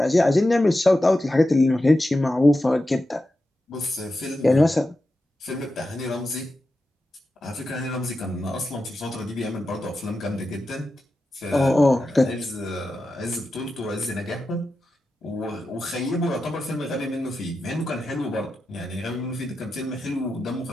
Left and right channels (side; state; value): both; normal; correlation 0.91